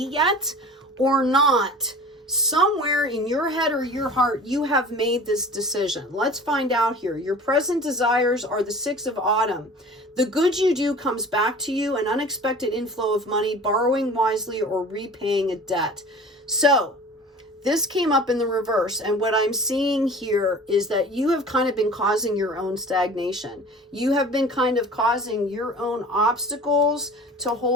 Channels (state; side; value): normal; both; correlation 0.42